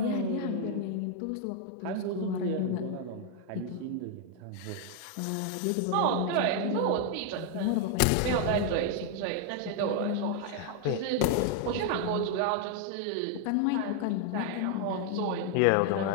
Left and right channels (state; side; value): different; both; correlation 0.00